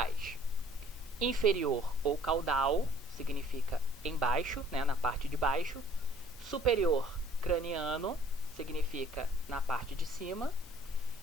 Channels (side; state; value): both; normal; correlation 0.55